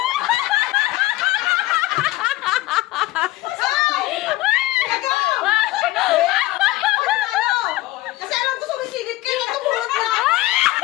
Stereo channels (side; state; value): right; quieter; 17.6 dB